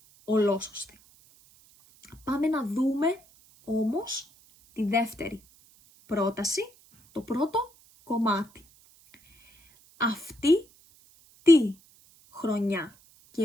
ολόσωστη. Πάμε να δούμε όμως τη δεύτερη πρόταση, το πρώτο κομμάτι. Αυτή τη χρονιά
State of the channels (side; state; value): right; noise; hiss, 28 dB below the sound